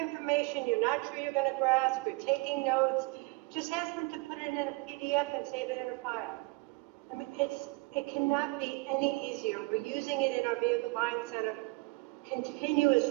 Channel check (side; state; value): left; quieter; 25.9 dB